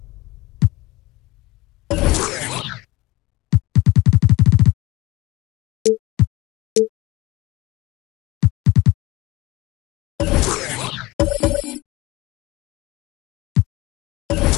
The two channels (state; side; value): quieter; right; 20.3 dB